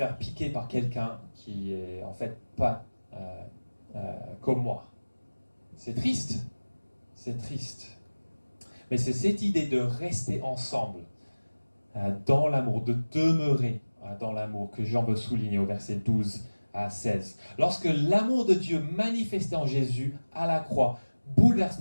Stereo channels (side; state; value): both; inverted; correlation -1.00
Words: piquer par quelqu'un qui est en fait pas comme moi. C'est triste. C'est triste. Mais c'est cette idée de rester ensemble dans l'amour, de demeurer dans l'amour que Jean veut souligner au verset 12 à 16. Lorsque l'amour de Dieu manifesté en Jésus à la croix bouleverse